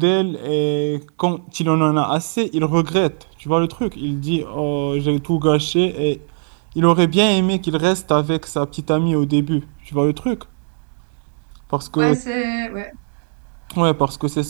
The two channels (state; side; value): silent; left; 60 dB below the other